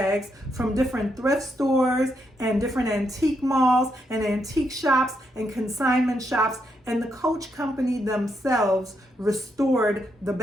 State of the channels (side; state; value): both; normal; correlation 0.79